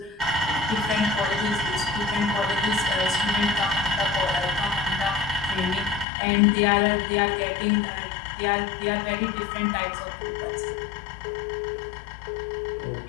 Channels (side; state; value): right; drops out; at 6.1 s